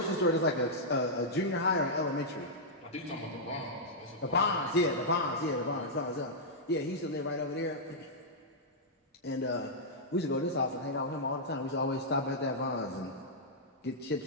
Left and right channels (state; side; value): normal; both; correlation -0.09